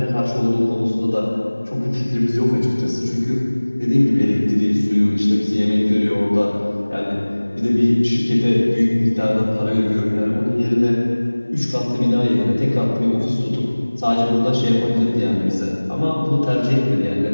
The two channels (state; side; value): inverted; both; correlation -1.00